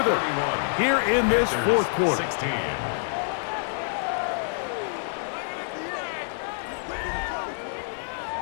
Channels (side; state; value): right; silent; digital silence